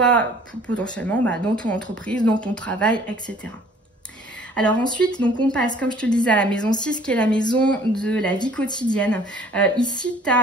potentiellement dans ton entreprise, dans ton travail, etc. Alors ensuite, donc on passe, comme je te le disais, à la maison 6, qui est la maison de la vie quotidienne. Ici, tu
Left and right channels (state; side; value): normal; both; correlation 0.54